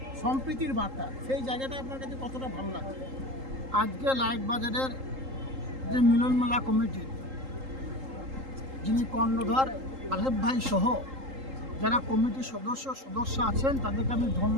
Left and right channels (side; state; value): left; late; 3.8 ms